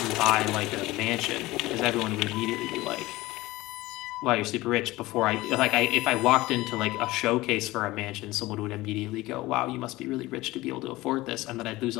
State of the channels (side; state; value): right; quieter; 18.9 dB